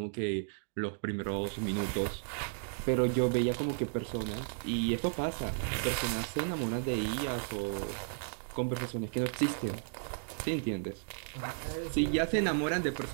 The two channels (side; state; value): left; silent; digital silence